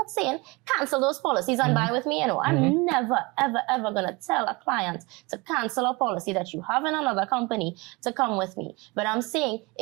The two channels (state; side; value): quieter; left; 25.6 dB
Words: saying cancel those policies and buy with me. I'm never, ever going to tell a client to cancel a policy that you have in another company to come with me. But I'm saying